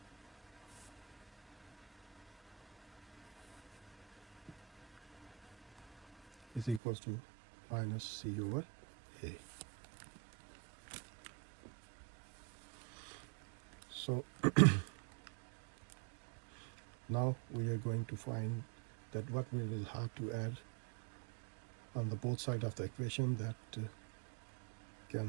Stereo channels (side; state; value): left; drops out; at 6.8 s